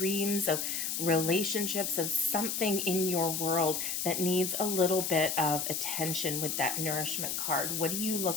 of relationships, of something in your world that needs a little bit of attention with that nourishment card. What do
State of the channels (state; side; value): noise; left; hiss, 1 dB below the sound